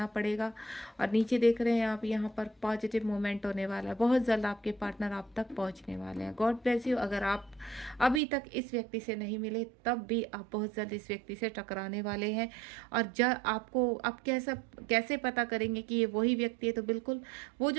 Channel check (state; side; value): drops out; left; at 8.2 s